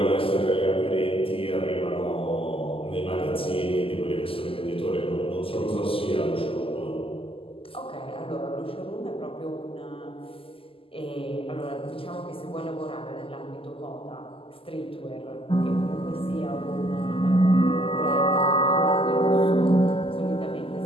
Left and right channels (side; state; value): right; late; 0.26 ms